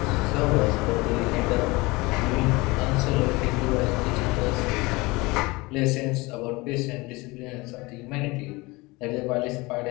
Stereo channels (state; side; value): quieter; right; 23.4 dB